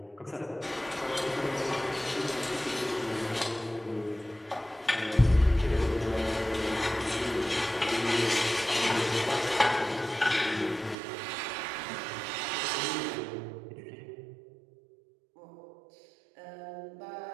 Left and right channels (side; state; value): left; drops out; at 11.0 s